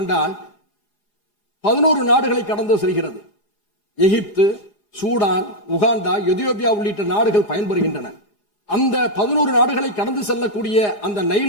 11 நாடுகளை கடந்து செல்கிறது. எகிப்து, சூடான், உகாண்டா, எதியோப்பியா உள்ளிட்ட நாடுகள் பயன்பெறுகின்றன. அந்த 11 நாடுகளை கடந்து செல்லக்கூடிய அந்த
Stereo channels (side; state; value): right; late; 4.9 ms